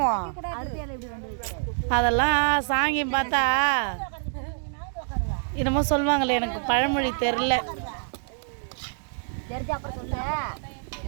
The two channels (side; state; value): left; silent; digital silence